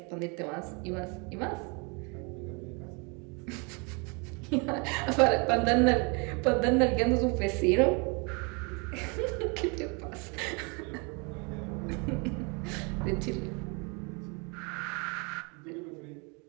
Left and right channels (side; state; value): left; quieter; 32.2 dB